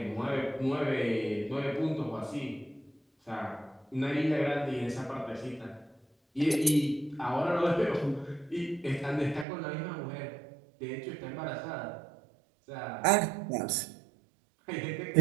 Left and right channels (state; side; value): drops out; left; at 9.5 s